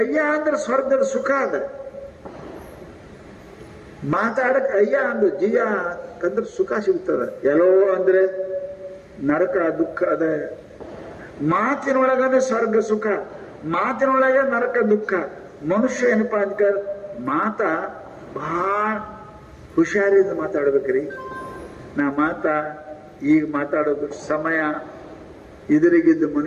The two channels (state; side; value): identical; both; correlation 1.00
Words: ಅಂದ್ರೆ ಸ್ವರ್ಗದ ಸುಖ ಅದ. ಮಾತಾಡಕ್ ಅಯ್ಯ ಅಂದ್ರೆ ಜಿಯ ಅಂದ್ರೆ ಸುಖ ಸಿಗ್ತದ. ಎಲ್ಲೋ ಅಂದ್ರೆ ನರಕ ದುಃಖ ಅದ. ಮಾತಿನೊಳಗನೆ ಸ್ವರ್ಗ ಸುಖ, ಮಾತಿನೊಳಗೆ ನರಕ ದುಃಖ. ಮನುಷ್ಯ ಏನಪ್ಪಾ ಅಂತ ಮಾತ ಬಹಳ ಹುಷಾರಿಂದ ಮಾತಾಡ್ಬೇಕ್ರಿ. ನಾ ಈಗ ಮಾತಾಡೋದು ಸಮಯ, ಎದುರಿಗಿದ್ದ